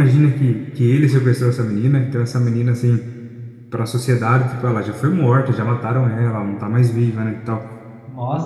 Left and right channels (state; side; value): identical; both; correlation 1.00